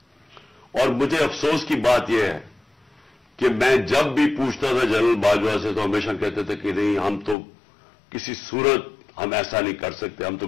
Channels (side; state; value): right; drops out; at 7.4 s